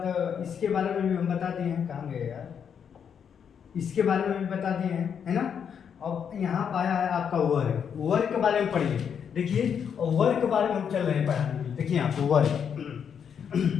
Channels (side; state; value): right; quieter; 7.6 dB